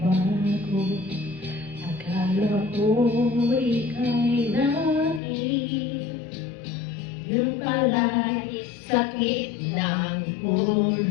Akala ko ika'y naging, yun pala'y sakit ng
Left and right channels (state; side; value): drops out; right; at 5.2 s